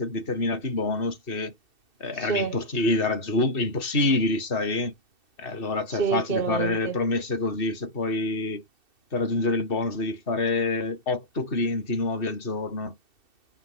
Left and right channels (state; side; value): late; right; 2.7 ms